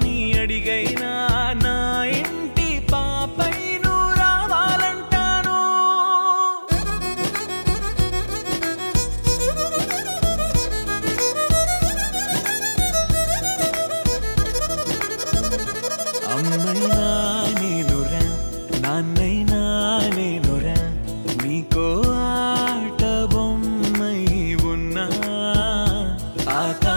అడిగైనా నా ఇంటి పాపై నువ్వు రావాలంటాను అమ్మైనా నేనురా నాన్నైనా నేనురా నీకో ఆట బొమ్మై ఉన్నా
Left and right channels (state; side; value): inverted; both; correlation -1.00